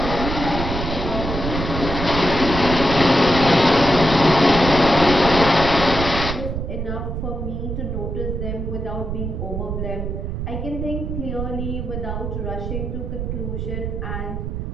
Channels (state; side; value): noise; right; rumble, 4 dB below the sound